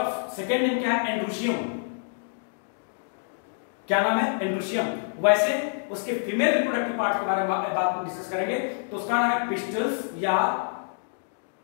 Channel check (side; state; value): right; silent; digital silence